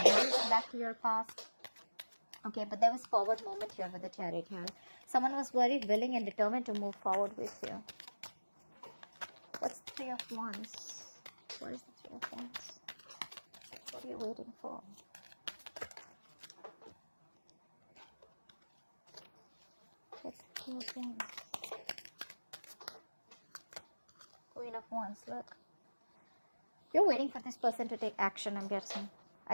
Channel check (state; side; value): inverted; both; correlation -1.00